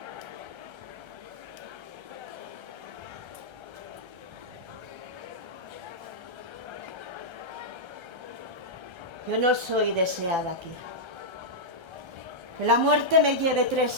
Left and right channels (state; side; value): late; left; 1.3 ms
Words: Yo no soy deseada aquí. Que la muerte me lleve